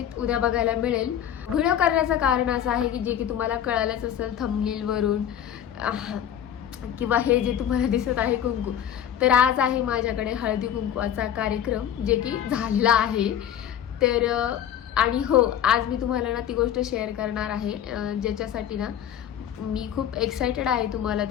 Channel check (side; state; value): right; quieter; 10.0 dB